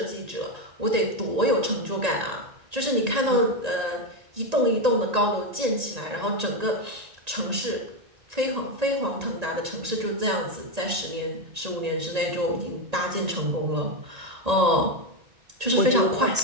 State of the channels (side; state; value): left; late; 1.8 ms